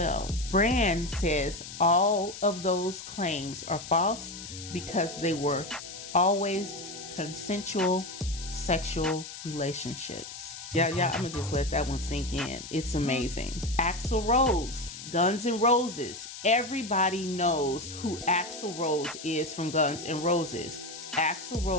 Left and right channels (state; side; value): noise; left; hiss, 11 dB below the sound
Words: Brand says all of those claims are false because they were always consensual sexual relationships. Yeah, I'm gonna just let that one sink in. It's amazing. Axl Rose, Guns N' Roses. Everybody knows who Axl Rose is from Guns N' Roses. Axl